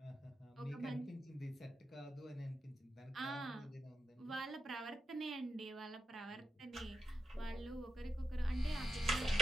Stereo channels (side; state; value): both; normal; correlation 0.87